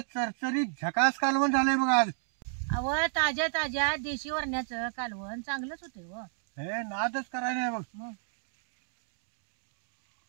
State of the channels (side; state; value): left; silent; digital silence